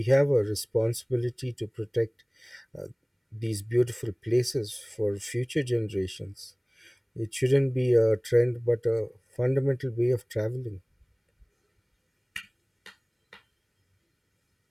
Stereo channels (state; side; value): identical; both; correlation 1.00